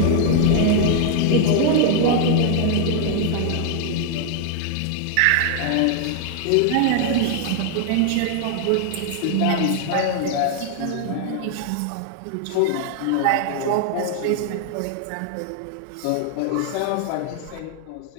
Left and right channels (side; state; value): both; different; correlation 0.00